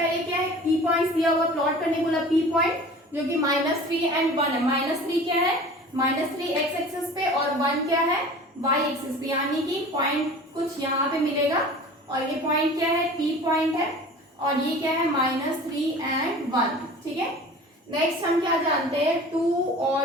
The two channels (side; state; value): both; normal; correlation 0.41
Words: क्या है, पी पॉइंट्स दिया हुआ, प्लॉट करने बोला पी पॉइंट, जो कि -3 एंड 1 है। -3 क्या है, -3 एक्स एक्सिस पे और 1 क्या है, वाई एक्सिस पे, यानी कि पॉइंट कुछ यहाँ पे मिलेगा और ये पॉइंट क्या है, पी पॉइंट है और ये क्या है, -3 एंड 1, ठीक है। नेक्स्ट हम क्या जानते हैं, 2